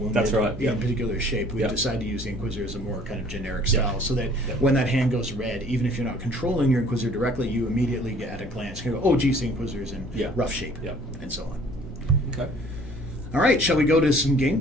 That's right, in a particular shape, we decided to use the Inquisitor as a more kind of generic style, so that when that hand goes red, even if you're not controlling your Inquisitor directly, you immediately get at a glance, go, oh, geez, the Inquisitor's in rough shape, and so on. Okay. All right, shall we go to some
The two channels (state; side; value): normal; both; correlation 0.54